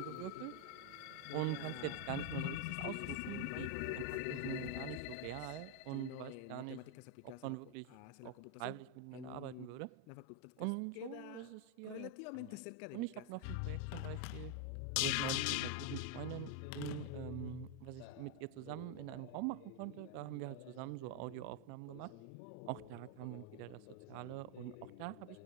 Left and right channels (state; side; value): different; both; correlation 0.01